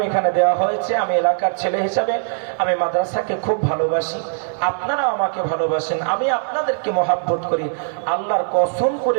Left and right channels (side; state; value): left; silent; 62 dB below the other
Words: এখানে দেওয়া হয়েছে। আমি এলাকার ছেলে হিসাবে আমি মাদ্রাসাকে খুব ভালোবাসি, আপনারা আমাকে ভালোবাসেন, আমি আপনাদেরকে মহাব্বত করি। আল্লাহর কসম